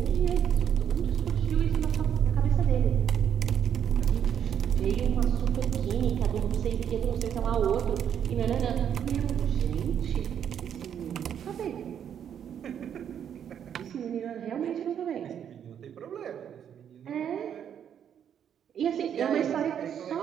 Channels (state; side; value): quieter; left; 8.9 dB